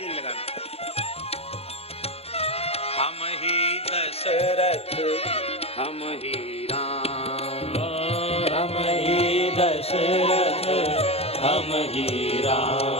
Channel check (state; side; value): late; right; 0.29 ms